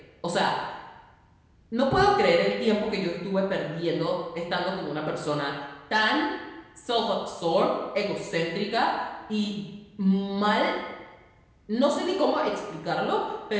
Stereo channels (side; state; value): both; identical; correlation 1.00